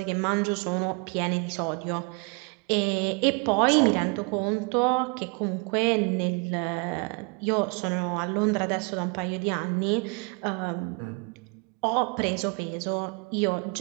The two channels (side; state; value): left; quieter; 33.0 dB